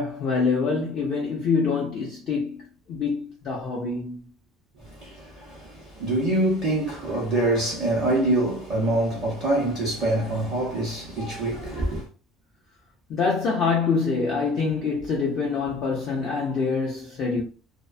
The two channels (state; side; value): normal; both; correlation 0.42